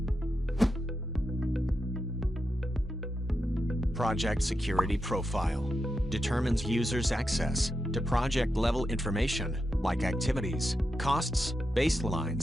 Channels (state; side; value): normal; both; correlation 0.88